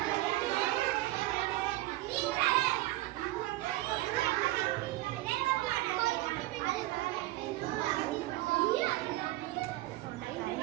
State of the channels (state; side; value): quieter; left; 17.7 dB